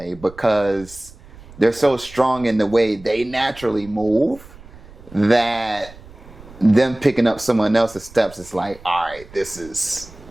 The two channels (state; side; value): noise; right; rumble, 20 dB below the sound